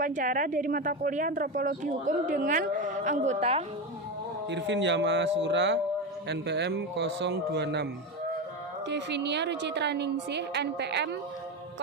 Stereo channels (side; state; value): both; normal; correlation 0.16